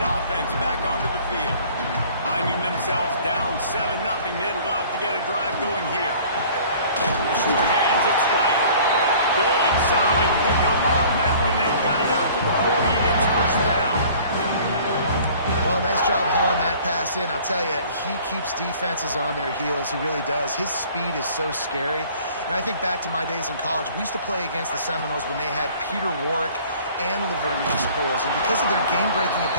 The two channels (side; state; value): both; inverted; correlation -0.51